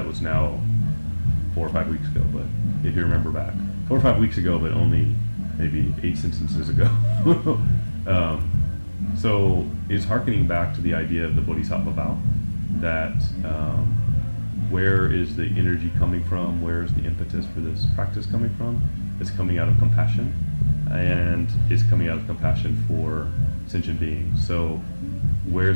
was now 4 or 5 weeks ago, but if you remember back, 4 or 5 weeks ago, but only maybe 8 sentences ago. So it's hearkening back to the idea of the Bodhisattva vow, that where is the energy coming from? Where is the impetus for this practice coming from? It's coming out of compassion, and it's coming out of compassion for sentient beings. So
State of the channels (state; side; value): inverted; both; correlation -1.00